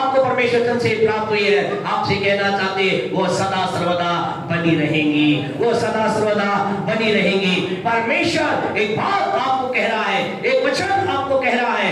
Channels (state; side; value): identical; both; correlation 1.00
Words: परमेश्वर से प्राप्त हुई है, आपसे कहना चाहते वो सदा सर्वदा बनी रहेंगी, वो सदा सर्वदा बनी रहेंगी। परमेश्वर एक बात आपको कह रहा है, एक वचन आपको कह रहा